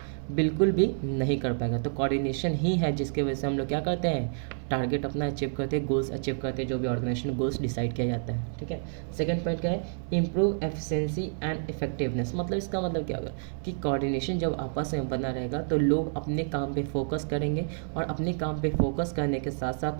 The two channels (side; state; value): left; silent; 58 dB below the other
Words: बिल्कुल भी नहीं कर पाएगा। तो कोऑर्डिनेशन ही है जिसके वजह से हम लोग क्या करते हैं, टारगेट अपना अचीव करते हैं, गोल्स अचीव करते हैं, जो भी ऑर्गेनाइजेशन गोल्स डिसाइड किया जाता है, ठीक है। सेकंड पॉइंट क्या है, इम्प्रूव एफिशिएंसी एंड इफेक्टिवनेस। मतलब इसका मतलब क्या होगा कि कोऑर्डिनेशन जब आपस में बना रहेगा तो लोग अपने काम पे फोकस करेंगे, और अपने काम पे फोकस करने के साथ